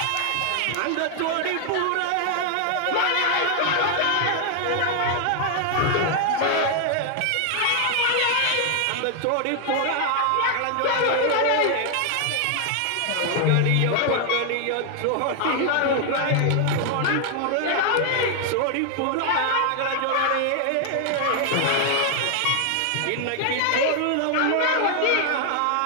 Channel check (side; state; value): both; different; correlation 0.00